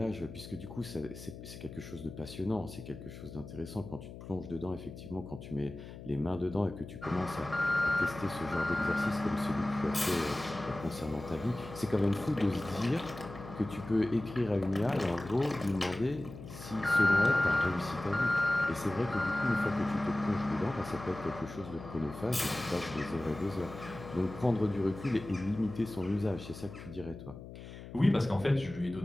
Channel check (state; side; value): noise; left; hum, 13 dB below the sound